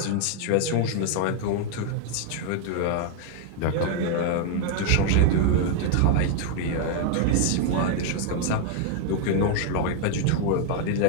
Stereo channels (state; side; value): different; both; correlation 0.00